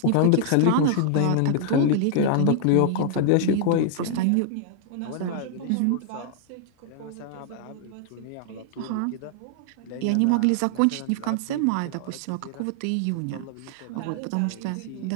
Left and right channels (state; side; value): different; both; correlation -0.01